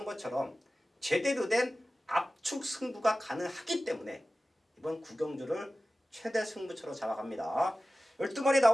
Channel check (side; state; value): both; normal; correlation 0.96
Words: 것처럼 제대로 된 압축 승부가 가능하기 때문에 이번 9경주를 최대 승부처로 잡아갑니다. 12마리